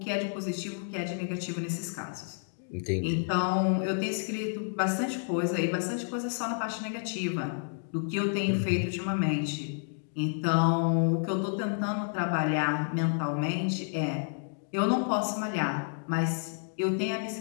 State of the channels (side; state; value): right; silent; digital silence